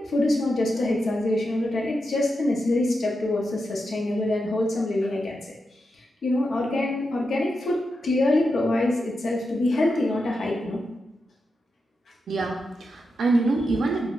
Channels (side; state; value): both; normal; correlation 0.88